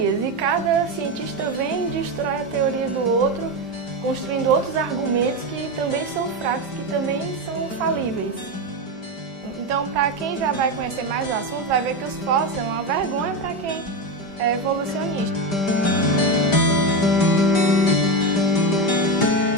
e cada cientista vem e destrói a teoria do outro, construindo outros argumentos que também são fracos, que também são falíveis. Então, para quem já vai conhecer mais o assunto, vai ver que os fósseis são uma vergonha para quem é evolucionista.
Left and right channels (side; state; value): right; late; 5.1 ms